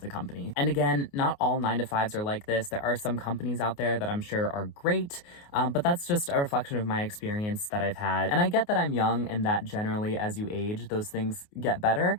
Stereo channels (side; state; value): right; late; 28 ms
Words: company. And again, not all 9-to-5s are like this. There are some companies out there that I'm sure are great, but that's just a reflection of my experience that I've had. And I get that I'm young and that generally as you age, those things get better.